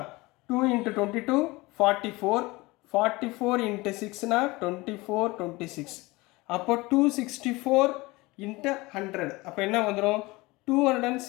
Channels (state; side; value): quieter; right; 22.2 dB